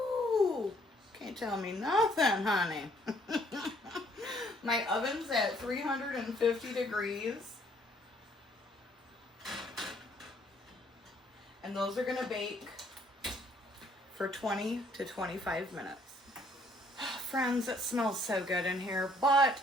can't tell me nothing, honey. My oven's at 350 degrees. And those are gonna bake for 20 to 25 minutes. Friends, it smells so good in here, but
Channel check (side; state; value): both; normal; correlation 0.64